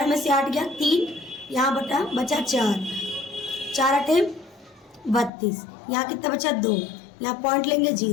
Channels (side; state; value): right; drops out; at 5.3 s